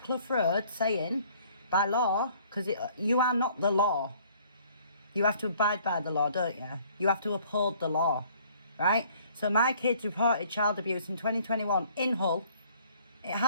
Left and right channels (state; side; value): inverted; both; correlation -0.58